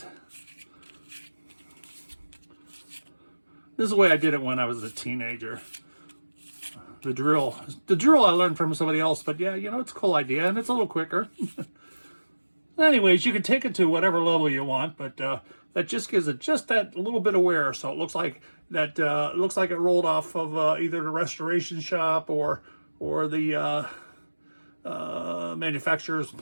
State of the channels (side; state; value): both; inverted; correlation -1.00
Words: This is the way I did it when I was a teenager. The drill I learned from somebody else, but yeah, you know, it's a cool idea and it's a little quicker. Anyways, you can take it to whatever level you want, but that just gives it just that little bit of wear, so it looks like that looks like it rolled off of either the restoration shop or the manufacturer's